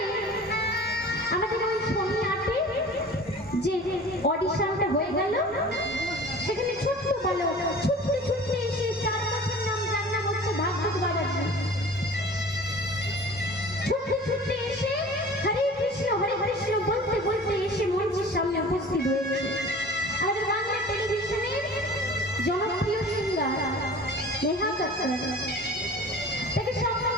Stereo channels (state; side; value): normal; both; correlation 0.42